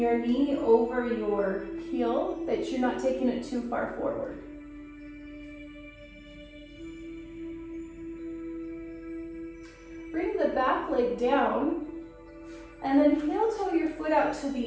knee over your heel, that you're not taking it too far forward. Bring the back leg down, and then heel toe your foot out to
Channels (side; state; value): both; identical; correlation 1.00